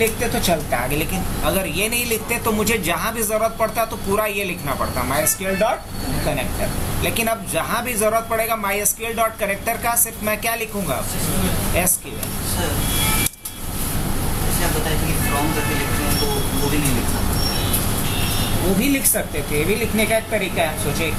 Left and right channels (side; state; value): both; identical; correlation 1.00